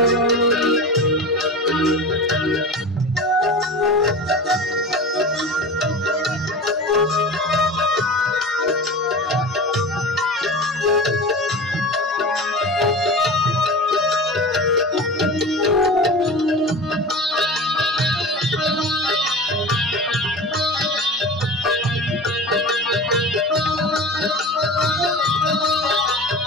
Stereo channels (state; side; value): normal; both; correlation 0.32